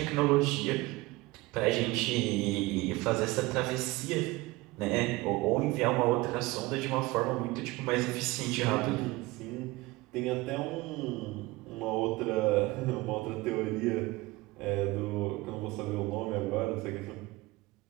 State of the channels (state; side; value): quieter; left; 21.0 dB